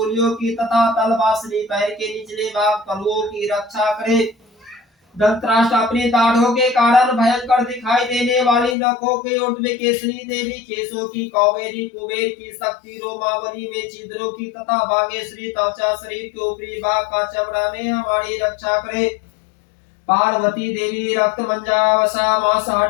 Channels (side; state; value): right; drops out; at 8.8 s